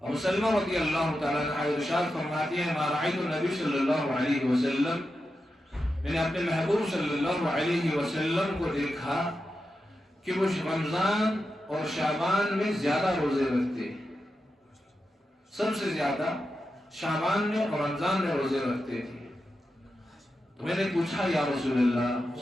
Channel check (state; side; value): normal; both; correlation 0.89